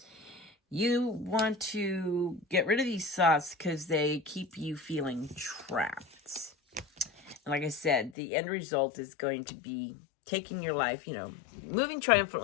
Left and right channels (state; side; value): drops out; right; at 8.2 s